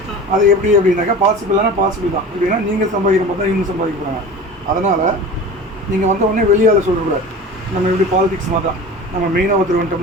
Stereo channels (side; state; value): both; normal; correlation 0.36